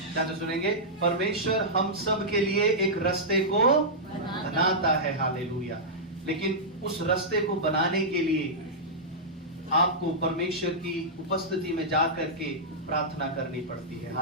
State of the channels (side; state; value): both; normal; correlation -0.11